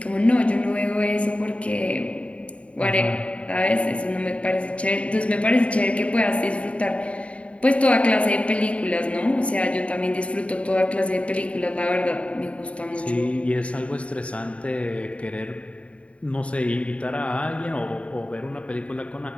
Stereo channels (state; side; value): late; right; 0.063 ms